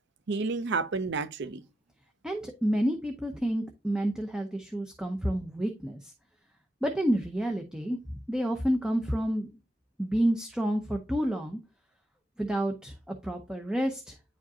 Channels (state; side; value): normal; both; correlation 0.87